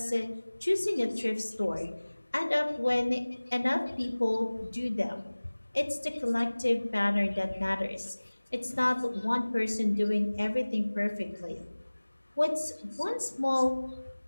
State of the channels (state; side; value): inverted; both; correlation -1.00